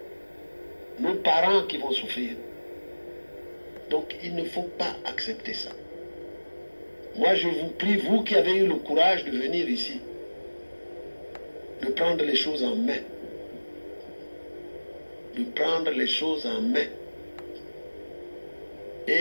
Nos parents qui vont souffrir. Donc il ne faut pas accepter ça. Moi je vous prie, vous qui avez eu le courage de venir ici, de prendre les choses en main. De prendre les choses en main.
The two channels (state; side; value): inverted; both; correlation -1.00